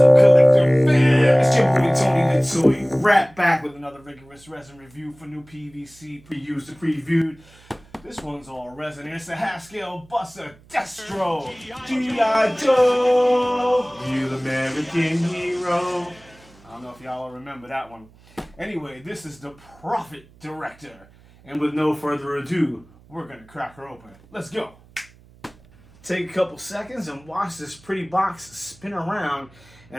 collector fam? It's your boy Tony the Toy, right back with another rigorous resin review for new PVC pre-used and previewed. This one's all resin. It's a half-scale buster Destro, G.I. Joe, real American hero. I don't know if y'all remember that one. Anyway, this is the Prophet Director. And with no further ado, we're gonna crack her open. Let's go. Take a couple seconds and watch this pretty box spin around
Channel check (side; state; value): right; noise; hum, 26 dB below the sound